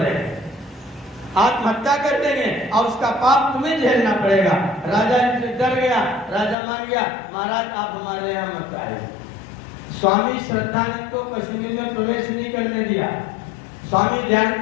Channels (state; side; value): drops out; right; at 6.6 s